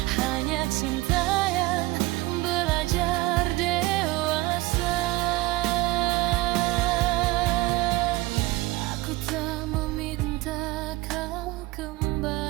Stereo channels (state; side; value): quieter; left; 19.9 dB